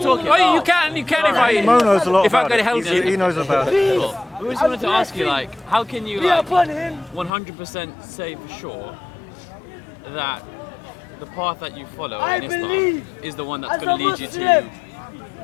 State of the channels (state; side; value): drops out; right; at 7.3 s